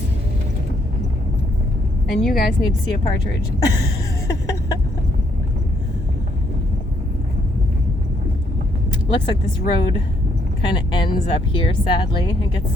And you guys need to see a partridge. Looks like this road kind of ends up here, sadly. It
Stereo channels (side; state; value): both; normal; correlation 0.71